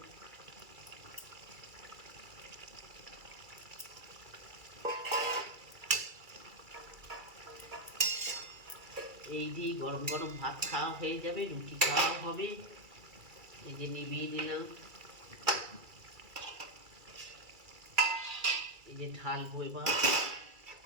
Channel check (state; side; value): late; left; 2.3 ms